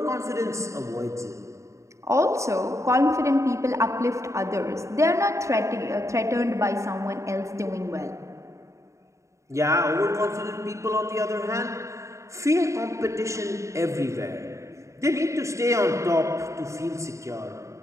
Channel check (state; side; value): late; left; 0.14 ms